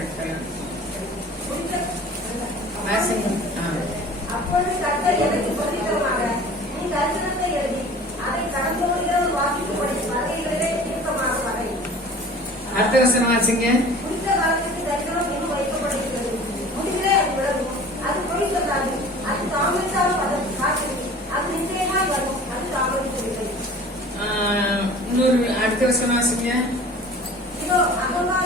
அப்பொழுது கர்த்தர் எனக்கு பிரதித்தரமாக, நீ தரிசனத்தை எழுதி அதை கடந்தோடுகிறவர் வாசிக்கும்படி வரைகளிலே தீர்க்கமாக வரை. அடுத்த வசனம் வாசிங்க. குறித்த காலத்துக்கு தரிசனம் இன்னும் வைக்கப்பட்டிருக்கிறது. முடிவிலே அது விலகும். அது பொய் சொல்லாது. அது தாமதித்தாலும் அதன் காற்று. அது நிச்சயமாய் வரும். அது தாமதிக்கவில்லை. இன்னொரு அடுத்த வசனம் வாசிங்க. இதோ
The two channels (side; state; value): both; normal; correlation 0.43